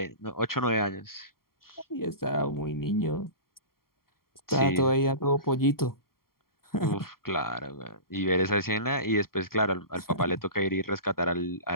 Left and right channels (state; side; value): late; right; 0.93 ms